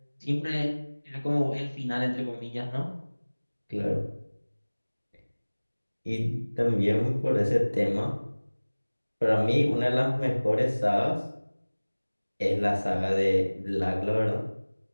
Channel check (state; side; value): inverted; both; correlation -1.00